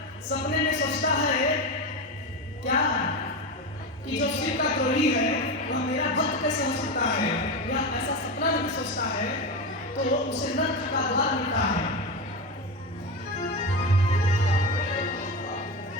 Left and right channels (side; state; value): both; normal; correlation 0.19